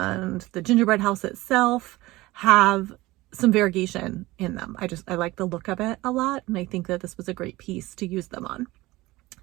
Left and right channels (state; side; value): quieter; left; 19.4 dB